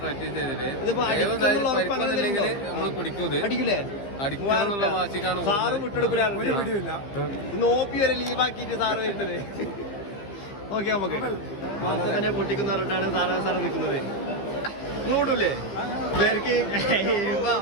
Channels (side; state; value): right; late; 15 ms